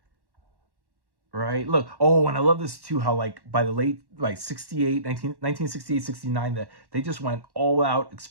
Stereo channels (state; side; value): late; left; 1.1 ms